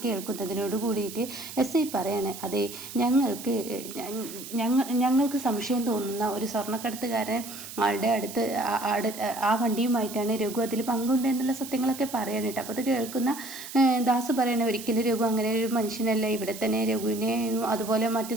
കേൾക്കുന്നതിനോട് കൂടിയിട്ട് എസ് ഐ പറയാണ്, അതെ, ഞങ്ങൾക്ക് സംശയം തോന്നുന്ന ഒരു സ്വർണ്ണക്കടത്തുകാരൻ ആളുടെ അടുത്ത് ആ വണ്ടിയുമായിട്ടാണ് രഘു അതിൽ പങ്കുണ്ട് എന്നുള്ള സത്യങ്ങളൊക്കെ പറയാണ് കേട്ടോ. അപ്പോൾ അത് കേൾക്കുന്ന ദാസ് പറയണേ, ഒരിക്കലും രഘു അങ്ങനെ ഒരു മനുഷ്യനല്ല. ഇവിടെ തന്നെ രഘുവിനെ അതുപോലെ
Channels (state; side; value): noise; right; hiss, 12 dB below the sound